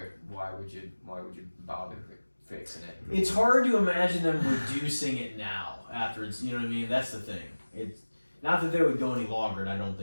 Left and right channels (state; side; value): inverted; both; correlation -1.00